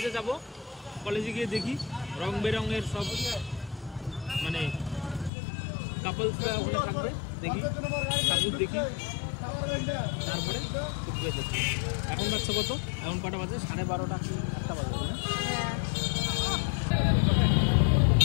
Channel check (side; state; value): right; drops out; at 5.3 s